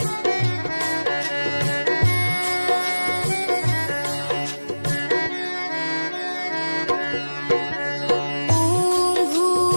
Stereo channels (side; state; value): both; inverted; correlation -1.00